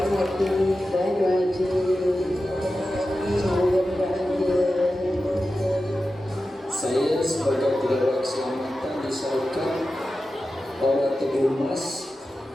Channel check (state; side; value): normal; both; correlation 0.92